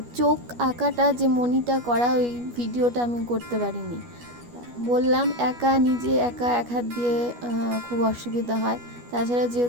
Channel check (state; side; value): late; left; 12 ms